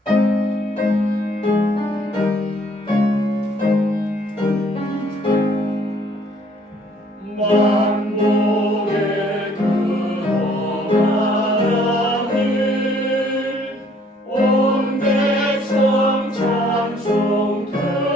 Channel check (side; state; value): both; normal; correlation 0.61